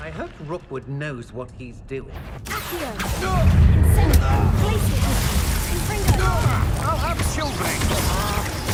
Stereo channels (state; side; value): identical; both; correlation 1.00